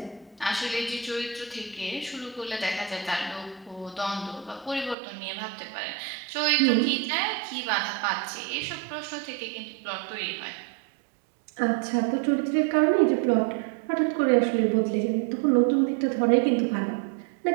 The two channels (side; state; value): left; drops out; at 5.0 s